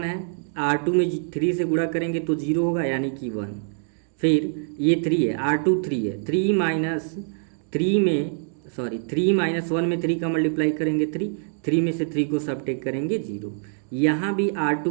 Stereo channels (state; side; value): silent; left; digital silence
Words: है, R2 में 3 से गुणा करेंगे तो 0 होगा यानी कि 1। फिर ये 3 है, R2 3 है, 3 माइनस 1 में 3 का मल्टीप्लाई करेंगे 3 में से 3 को सब्ट्रैक्ट करेंगे 0। यहाँ भी R2